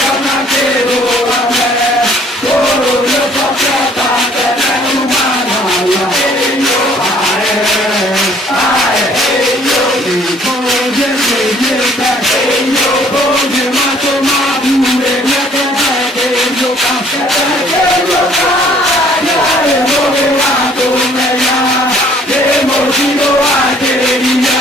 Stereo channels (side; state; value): both; normal; correlation 0.59